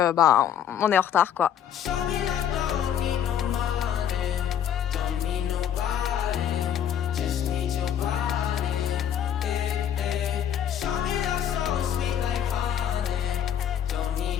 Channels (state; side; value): quieter; right; 9.5 dB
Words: est en retard quoi.